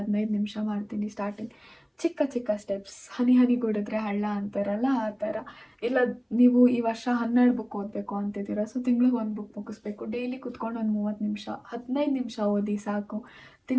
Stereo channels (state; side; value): identical; both; correlation 1.00